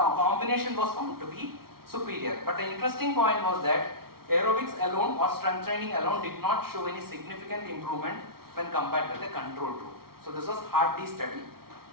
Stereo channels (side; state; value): left; late; 0.94 ms